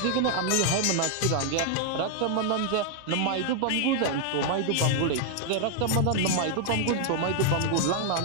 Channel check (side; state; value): both; different; correlation 0.00